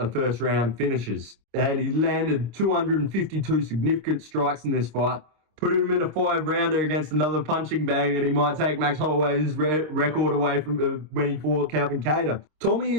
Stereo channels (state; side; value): late; left; 26 ms